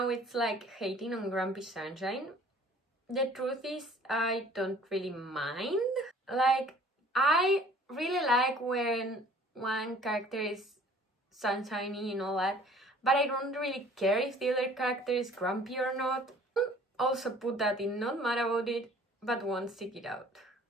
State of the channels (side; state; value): both; normal; correlation 0.52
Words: it's hating on Grumpy Sunshine. The truth is I don't really mind. I really like when one character is sunshiny and all that, but I don't really care if the other character is grumpy or not. Also put that in not mad about it, but won't seek it out.